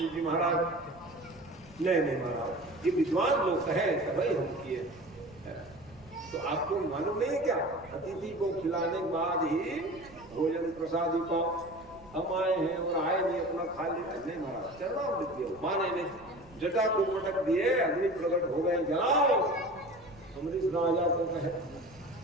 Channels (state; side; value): noise; right; rumble, 23 dB below the sound